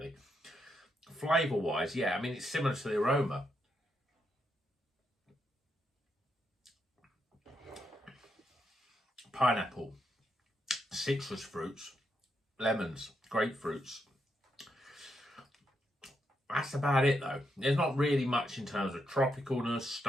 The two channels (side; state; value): both; normal; correlation 0.80